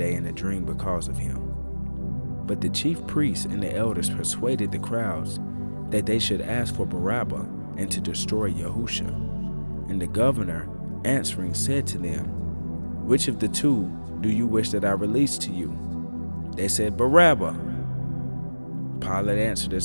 in a dream because of him. But the chief priests and the elders persuaded the crowds that they should ask for Barabbas and to destroy YaHUsHa. And the governor, answering, said to them, Which of the two do you wish that I release to you? They said, Barabbas. Pilate answered and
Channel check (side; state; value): both; inverted; correlation -1.00